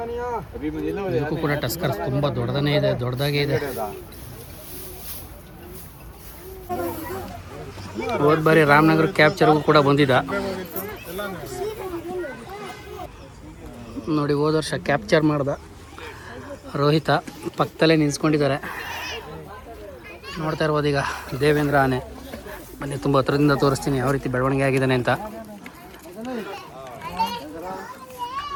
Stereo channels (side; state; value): both; identical; correlation 1.00